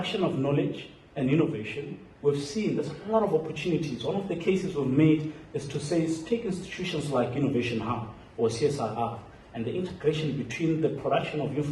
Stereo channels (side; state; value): both; identical; correlation 1.00